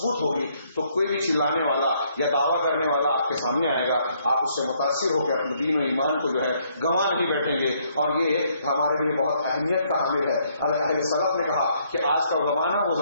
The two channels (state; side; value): inverted; both; correlation -0.69